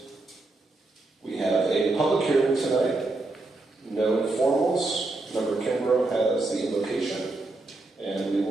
We have a public hearing tonight. No informals. Member Kimbrough has the invocation. And we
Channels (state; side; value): quieter; left; 3.1 dB